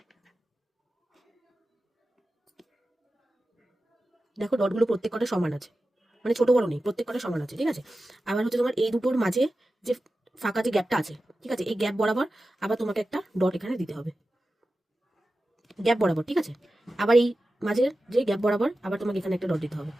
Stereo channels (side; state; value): both; normal; correlation 0.93